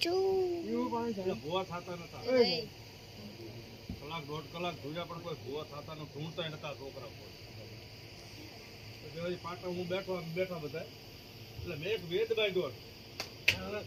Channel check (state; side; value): identical; both; correlation 1.00